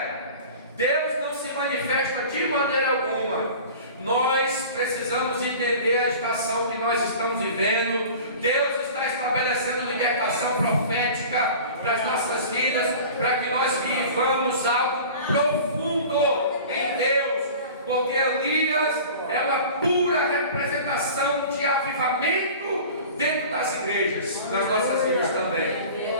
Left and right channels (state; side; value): inverted; both; correlation -0.40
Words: Deus não se manifesta de maneira alguma. Nós precisamos entender a estação que nós estamos vivendo. Deus está estabelecendo libertação profética para as nossas vidas, para que nós vivamos algo profundo em Deus, porque Elias é uma pura representação de avivamento dentro das igrejas, nas nossas vidas também.